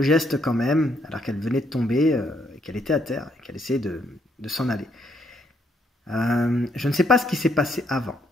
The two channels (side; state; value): both; normal; correlation 0.72